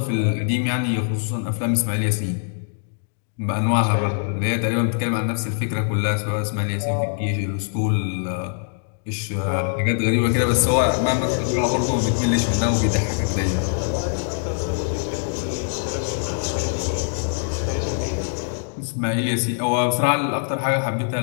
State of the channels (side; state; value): right; silent; digital silence